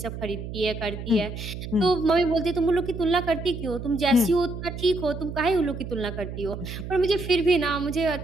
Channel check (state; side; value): noise; right; hum, 8 dB below the sound